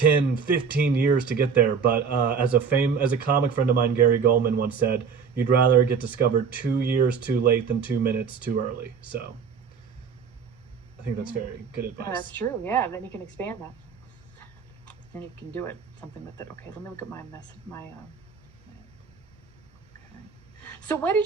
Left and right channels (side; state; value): left; quieter; 6.1 dB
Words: 15 years to get there. But as a comic friend of mine, Gary Goldman, once said, you'd rather get discovered 2 years too late than 2 minutes too early. So I think that's Yeah. very good Yeah, that's advice. true. Yeah, then you can expand that. And you can do it something with it. Okay, let me look at my mess. Okay. So when